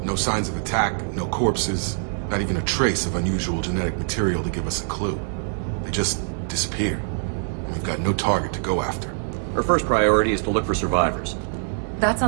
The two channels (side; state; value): left; silent; digital silence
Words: No signs of attack, no corpses, not even a trace of unusual genetic material to give us a clue. They just disappeared. And we've got no target to go after. Our first priority is to look for survivors. That's